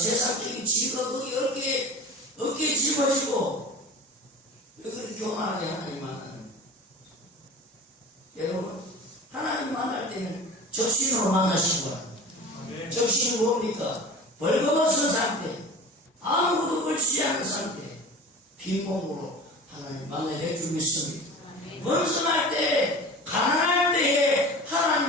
지위가 거기 어깨에 짊어지고 왜 그렇게 교만하게 하나님 만나는 여러분, 하나님 만날 때는 적신으로 만나시기 바랍니다. 적신은 뭡니까? 벌거벗은 상태, 아무것도 걸치지 않은 상태, 빈몸으로 하나님 만나게 해주고 있습니다. 번성할 때, 가난할 때에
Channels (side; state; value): both; normal; correlation 0.36